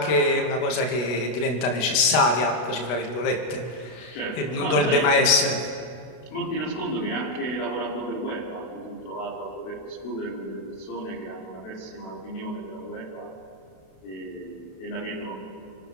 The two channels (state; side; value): late; right; 33 ms